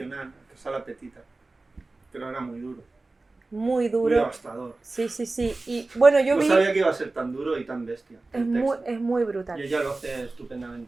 que Sala Petita. Pero era muy duro. Muy Muy duro. devastador. Sí, sí, sí. Y bueno, yo No vi. sabía que iba a ser tan duro y tan bestia. Es el muy, texto. es muy brutal. Y ella lo hace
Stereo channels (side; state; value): left; quieter; 3.3 dB